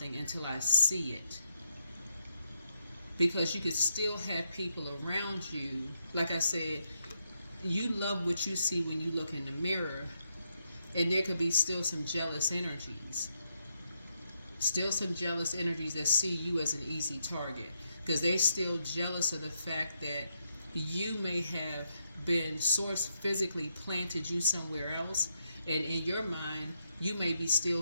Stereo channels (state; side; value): inverted; both; correlation -0.79